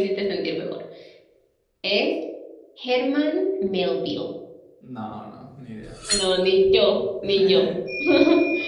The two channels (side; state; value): both; identical; correlation 1.00